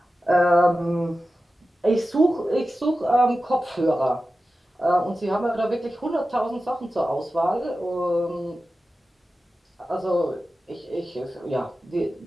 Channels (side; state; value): both; normal; correlation 0.94